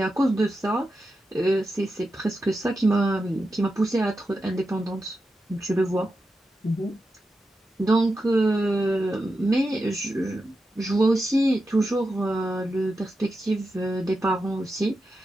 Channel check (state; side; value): normal; both; correlation 0.89